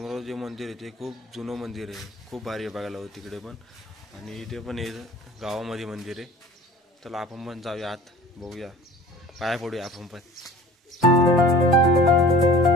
जे मंदिर आहे ते खूप जुनं मंदिर आहे, खूप भारी आहे बघायला तिकडे पण। आणि इथे पण आहे गावामध्ये मंदिर आहे। चला आपण पण जाऊया आत, बघूया, पाया पडूया आपण पण।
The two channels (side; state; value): both; normal; correlation 0.44